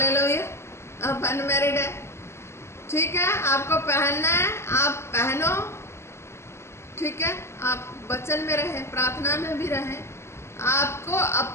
आप अनमैरिड है, ठीक है, आपको पहनना है, आप पहनो, ठीक है। आप वचन में रहें, प्रार्थना में भी रहें। आपको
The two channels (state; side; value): late; right; 0.13 ms